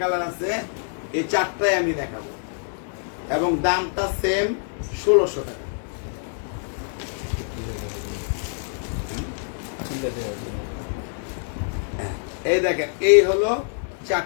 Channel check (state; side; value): silent; right; 58 dB below the other